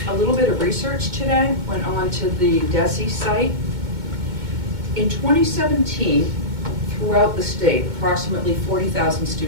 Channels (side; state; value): left; late; 2.2 ms